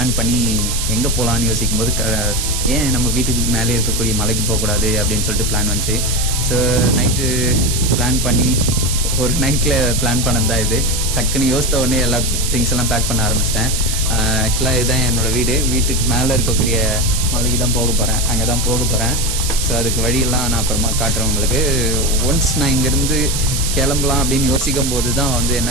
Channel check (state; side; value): noise; right; hiss, 2 dB below the sound